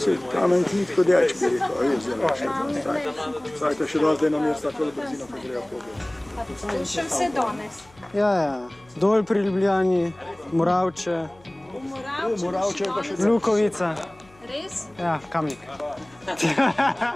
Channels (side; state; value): left; noise; hum, 28 dB below the sound